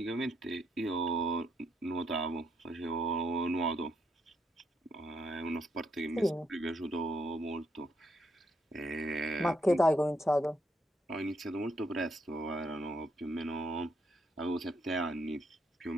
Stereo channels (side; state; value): both; normal; correlation 0.76